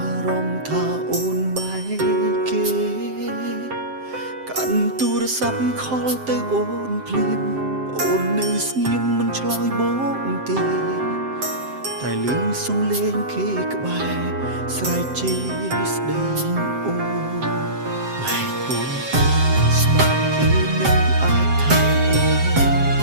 រម្មណ៍ថាអូនបែកគេកាន់ទូរស័ព្ទខលទៅអូនភ្លាមអូននៅស្ងៀមមិនឆ្លើយបងទេតែលឺសំឡេងគេក្បែរស្រែកជេរស្ដីអូនបែកអូនស្មានគេនឹងអាចថាអូន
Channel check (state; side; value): late; left; 7.6 ms